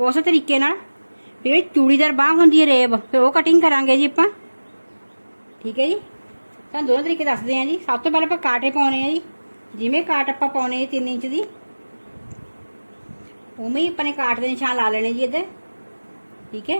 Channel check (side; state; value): both; inverted; correlation -1.00